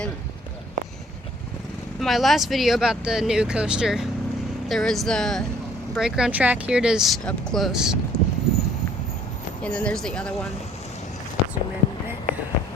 my last video about the new coaster, there was the brake run track. Here it is up close. And then there's the other one. Zoom in a bit.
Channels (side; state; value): both; normal; correlation 0.58